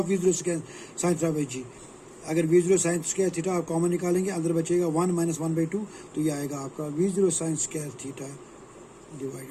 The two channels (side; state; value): both; identical; correlation 1.00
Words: v0 square sine theta by g. अगर v0 साइन स्क्वायर थीटा आप कॉमन निकालेंगे, अंदर बचेगा 1 माइनस 1/2, तो ये आएगा आपका v0 sine square theta divide